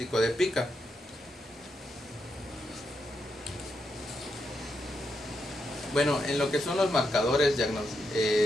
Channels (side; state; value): both; normal; correlation 0.83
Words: de pica. Bueno, en lo que son los marcadores